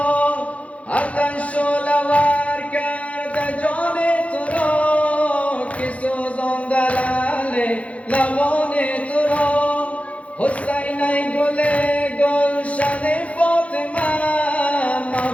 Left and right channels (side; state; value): right; late; 0.064 ms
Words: آتش شعله‌ور کرده جان تو را که سوزانده لعل لبان تو را. حسین ای گل گلشن فاطمه